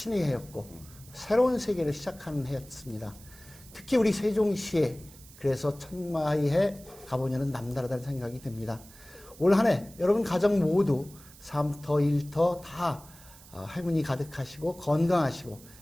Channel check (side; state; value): right; noise; hiss, 21 dB below the sound